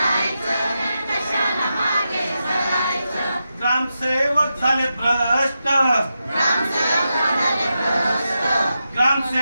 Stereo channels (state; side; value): inverted; both; correlation -0.88